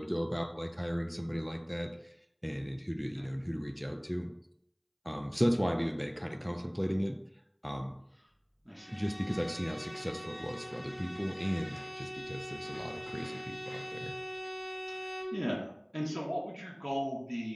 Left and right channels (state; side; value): identical; both; correlation 1.00